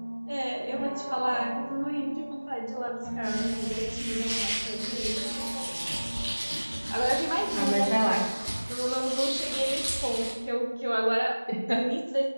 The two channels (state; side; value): inverted; both; correlation -1.00